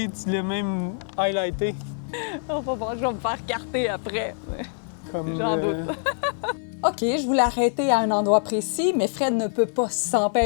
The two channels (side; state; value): right; silent; 56 dB below the other